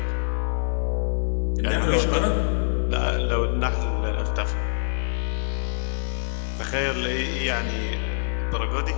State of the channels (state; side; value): silent; right; 58 dB below the other